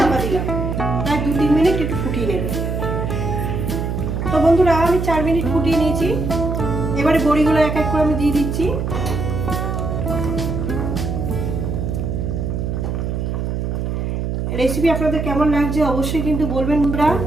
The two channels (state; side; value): noise; right; hum, 2 dB below the sound